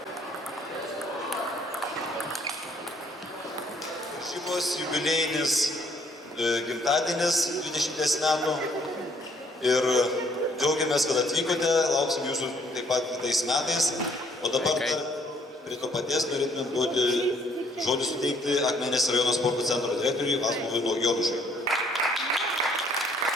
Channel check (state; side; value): normal; both; correlation 0.64